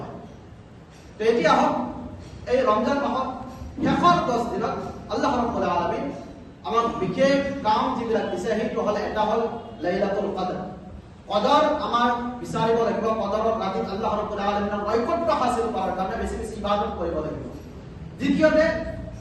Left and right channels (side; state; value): both; identical; correlation 1.00